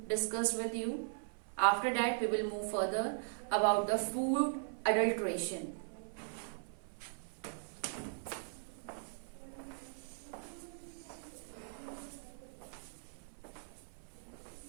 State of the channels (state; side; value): silent; left; 52 dB below the other